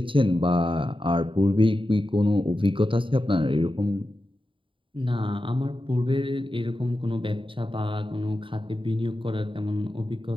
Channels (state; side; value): late; left; 0.25 ms